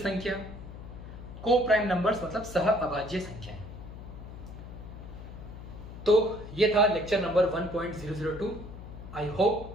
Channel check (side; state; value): left; noise; hum, 12 dB below the sound